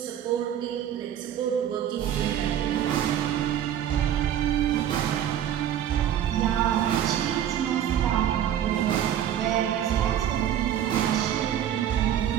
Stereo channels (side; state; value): left; quieter; 10.5 dB